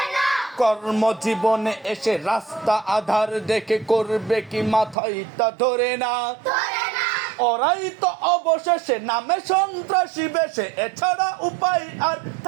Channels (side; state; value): left; drops out; at 5.0 s